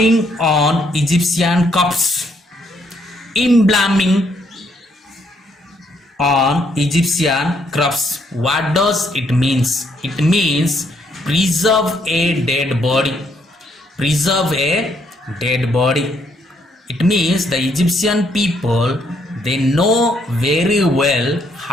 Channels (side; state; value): both; normal; correlation 0.71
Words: on Egyptian corpses. Embalming on Egyptian corpse. What does it means? It means preserve a dead body. Preserve a dead body. It means the Egyptian people, they know very well